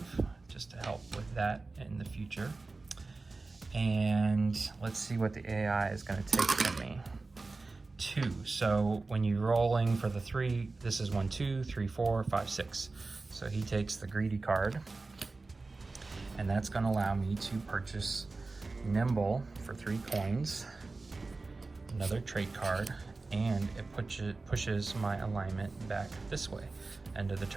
just to help with that in the future. And let's see what the AI is gonna take from me. 2, so when you're rolling for the 3, this is 1, 2, 3, 4, 5, 6. So he takes the Greedy card, and that's gonna allow me to purchase Nimble for 3 coins, another trait card, and it pushes my alignment back this way. End of the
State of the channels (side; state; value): left; quieter; 3.6 dB